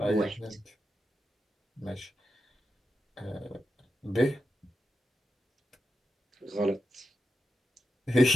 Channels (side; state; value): both; normal; correlation 0.89